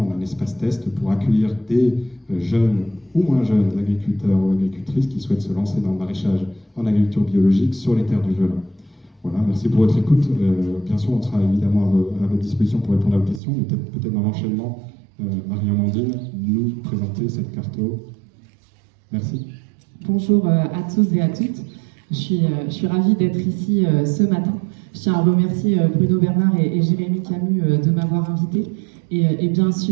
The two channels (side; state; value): left; drops out; at 13.4 s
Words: un espace test pour accueillir des jeunes ou moins jeunes agriculteurs ou agricultrices qui souhaitent se lancer dans le maraîchage en agriculture biologique sur les terres du Velin. Voilà, merci pour votre écoute. Bien sûr, on sera évidemment à votre disposition pour répondre à vos questions, mais peut-être dans l'enchaînement, Marie-Amandine nous présenter cette carto. Merci. Bonjour à tous et à toutes. Je suis ravie d'être ici ce matin. Je tiens à remercier Bruno Bernard et Jérémy Camus de m'avoir invité et bien